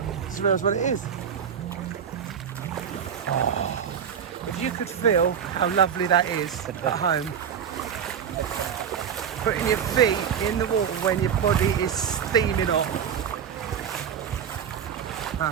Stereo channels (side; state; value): left; quieter; 7.9 dB